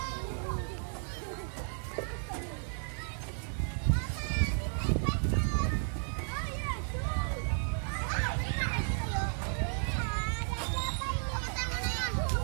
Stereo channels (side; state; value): left; silent; 55 dB below the other